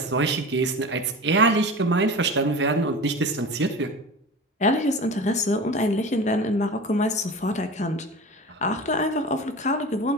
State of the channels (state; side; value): normal; both; correlation 0.32